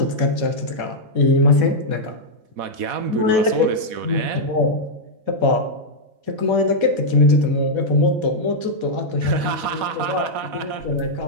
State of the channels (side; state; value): left; late; 4.1 ms